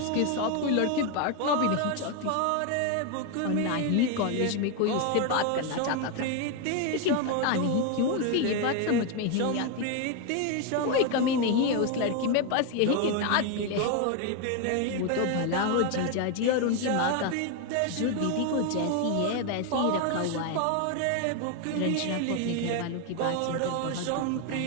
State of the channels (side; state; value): both; different; correlation 0.01